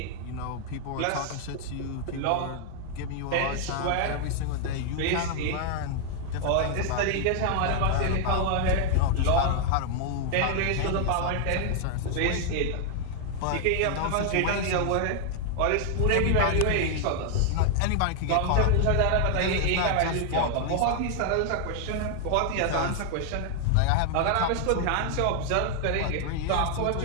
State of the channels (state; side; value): different; both; correlation 0.00